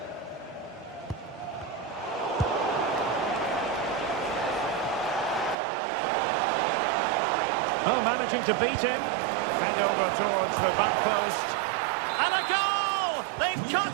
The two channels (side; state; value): left; drops out; at 5.6 s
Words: Oh, managing to beat him. Fed over towards the back post. And a goal! They've